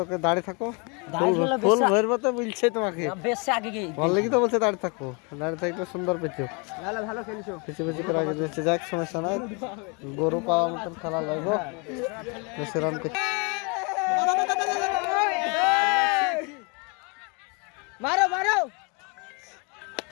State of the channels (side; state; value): right; quieter; 32.1 dB